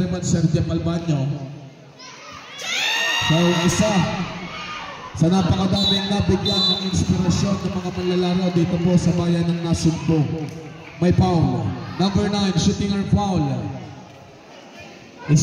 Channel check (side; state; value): both; identical; correlation 1.00